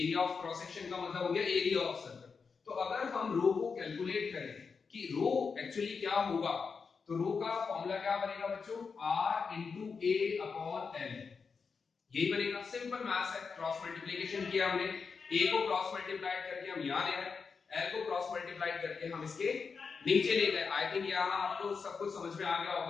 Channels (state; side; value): quieter; right; 5.3 dB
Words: ऑफ क्रॉस सेक्शन का मतलब हो गया एरिया ऑफ सर्कल। तो अगर हम रो को कैलकुलेट करें कि रो एक्चुअली क्या होगा, तो रो का फॉर्मूला क्या बनेगा बच्चों, R into A upon L, यही बनेगा। सिंपल मैथ्स है, क्रॉस मल्टीप्लिकेशन किया हमने, A को क्रॉस मल्टीप्लाई करके हम यहां ले आए, L को क्रॉस मल्टीप्लाई करके हम इसके नीचे ले गए। आई थिंक यहां आपको सब कुछ समझ में आ गया